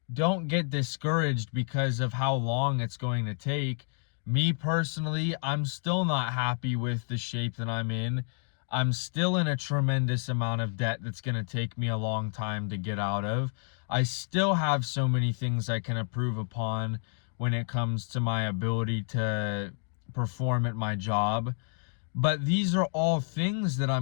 don't get discouraged because of how long it's going to take. Me personally, I'm still not happy with the shape that I'm in. I'm still in a tremendous amount of debt that's going to take me a long time to get out of. I still have so many things I can improve upon when it comes to my ability to perform at my job. But these are all things that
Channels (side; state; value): right; silent; 58 dB below the other